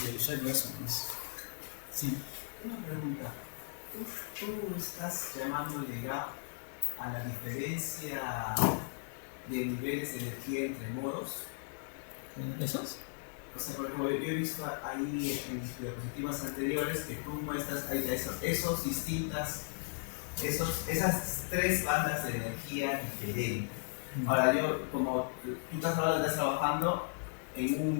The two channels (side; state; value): right; silent; 54 dB below the other